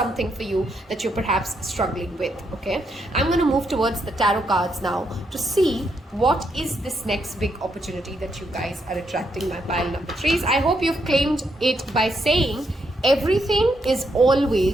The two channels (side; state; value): both; normal; correlation 0.78